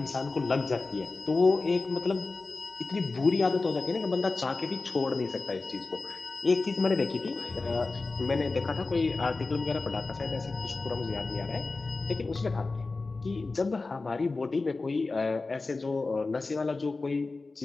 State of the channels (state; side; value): quieter; right; 3.7 dB